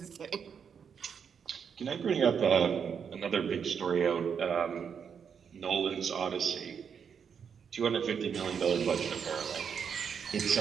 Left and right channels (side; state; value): left; quieter; 7.0 dB